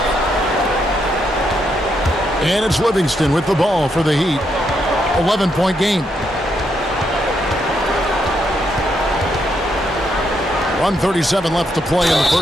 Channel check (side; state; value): both; normal; correlation 0.78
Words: And it's Livingston with the ball for the Heat. 11-point game. 1:37 left to play in the